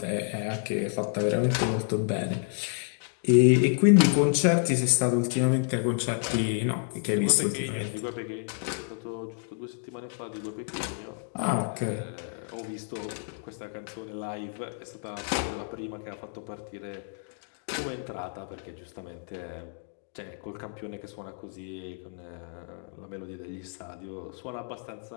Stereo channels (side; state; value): right; silent; 58 dB below the other